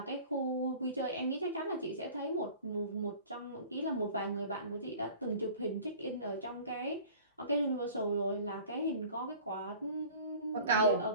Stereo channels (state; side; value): inverted; both; correlation -0.44